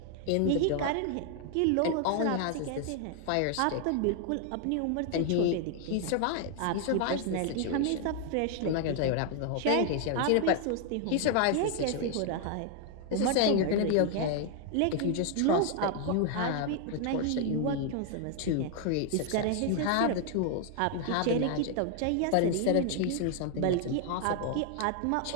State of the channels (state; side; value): different; both; correlation 0.00